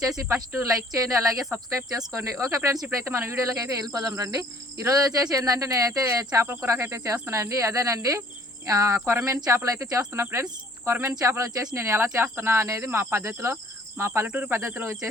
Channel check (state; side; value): normal; both; correlation 0.56